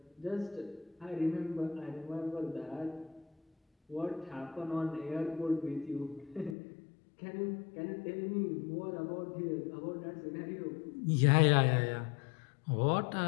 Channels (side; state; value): right; drops out; at 6.6 s